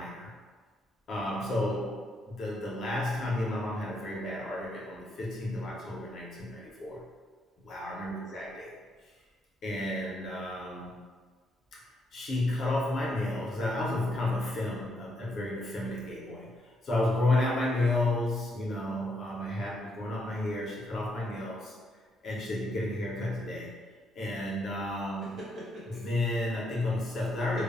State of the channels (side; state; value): both; normal; correlation 0.76